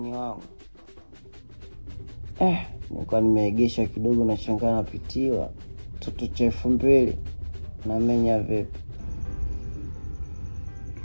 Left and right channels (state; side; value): inverted; both; correlation -1.00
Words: wangu. Nilikuwa nimeegesha kidogo na shangaa napitiwa. Toto cha 2000 na menya vipi?